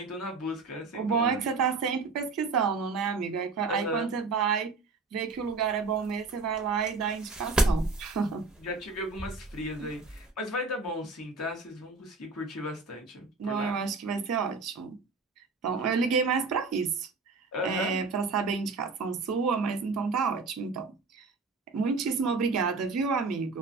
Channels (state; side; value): quieter; left; 4.1 dB